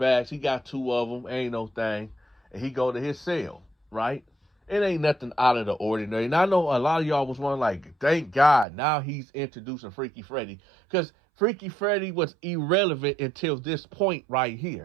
He got 2 of them. Ain't no thing. And he go to his cell, right? It ain't nothing out of the ordinary. And I know a lot of y'all was wondering, like, thank God, now he's introducing Freaky Freddy. Because Freaky Freddy was irrelevant until this point right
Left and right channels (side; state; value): left; drops out; at 8.7 s